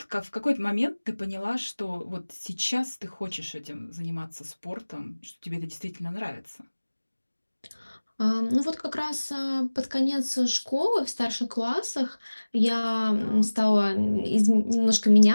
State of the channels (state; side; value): inverted; both; correlation -1.00